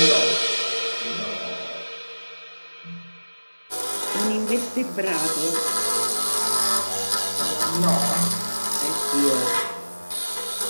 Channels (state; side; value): inverted; both; correlation -1.00